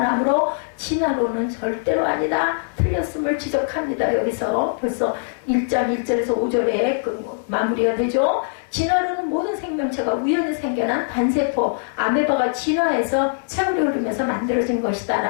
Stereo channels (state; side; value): silent; right; 64 dB below the other